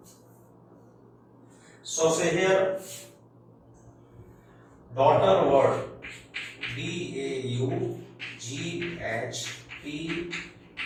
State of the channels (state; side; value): identical; both; correlation 1.00